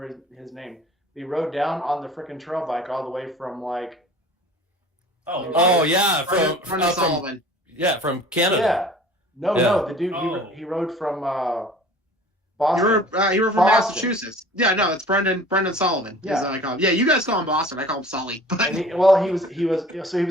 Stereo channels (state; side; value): normal; both; correlation 0.46